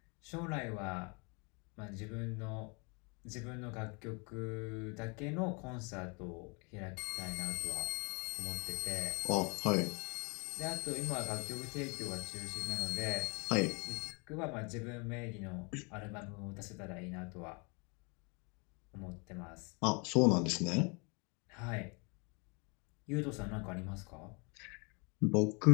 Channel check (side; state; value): right; quieter; 32.2 dB